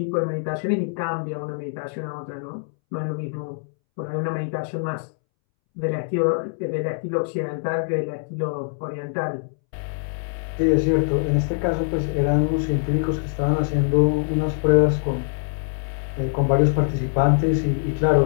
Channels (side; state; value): right; silent; 63 dB below the other